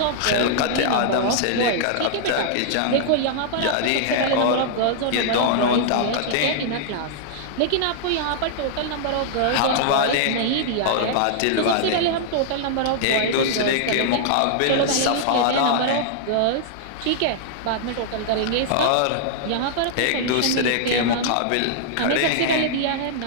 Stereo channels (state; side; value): different; both; correlation -0.01